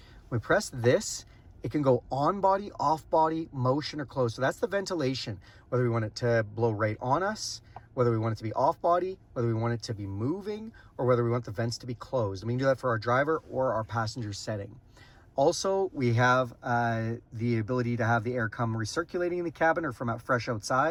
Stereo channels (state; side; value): identical; both; correlation 1.00